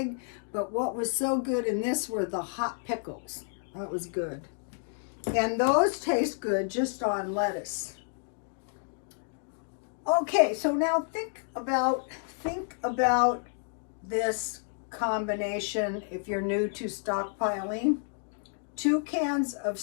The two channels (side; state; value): right; silent; 58 dB below the other